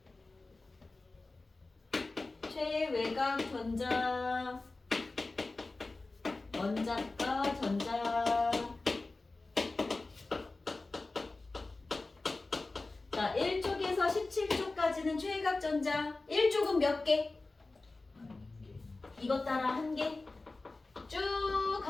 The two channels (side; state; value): right; quieter; 3.4 dB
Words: 최외곽 전자, 원자가 전자. 자, 1쪽에서 17쪽까지는 최외곽 전자. 1쪽은 몇 개? 이것 따라 1개. 쭉